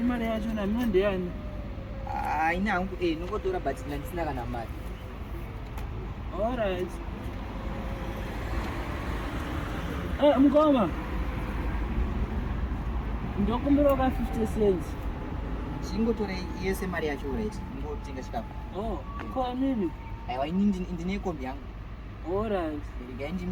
mari yacho namino ndeyani? Ina hangu nongotora but ndisina kana mari. Alright. Mukoma. Ndokumbira ka 50 cents. Chingotore yese mari yacho right. Ngotenga chikafu. Kwa mimi? Aiwa ini ndine kombi yangu. Alright. Regai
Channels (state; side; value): identical; both; correlation 1.00